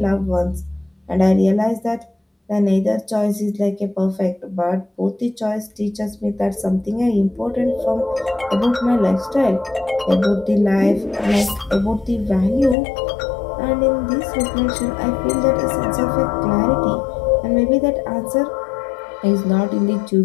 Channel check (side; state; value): right; drops out; at 12.8 s